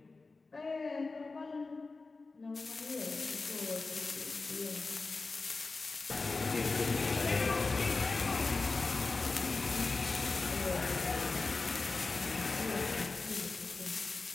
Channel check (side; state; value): right; quieter; 3.8 dB